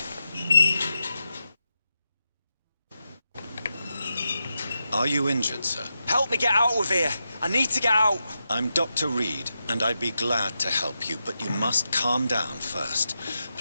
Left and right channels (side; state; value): both; inverted; correlation -0.88